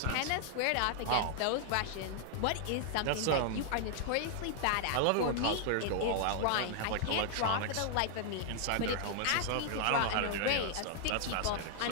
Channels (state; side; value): different; both; correlation 0.00